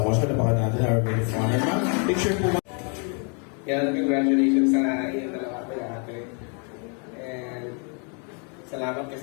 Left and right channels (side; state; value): right; quieter; 38.2 dB